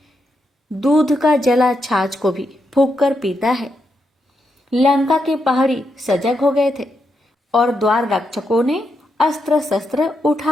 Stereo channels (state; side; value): normal; both; correlation 0.82